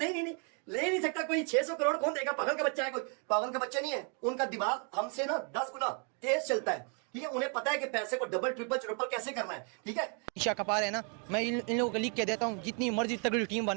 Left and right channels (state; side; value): quieter; left; 38.7 dB